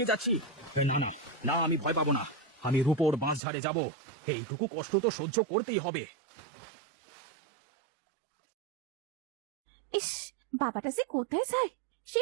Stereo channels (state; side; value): drops out; left; at 3.4 s